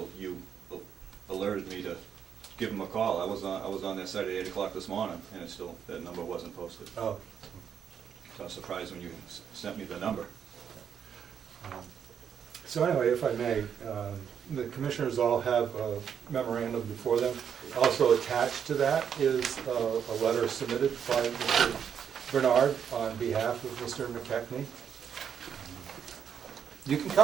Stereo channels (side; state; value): left; quieter; 7.9 dB